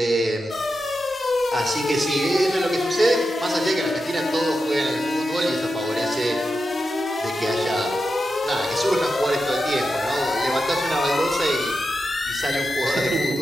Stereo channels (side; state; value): both; normal; correlation 0.89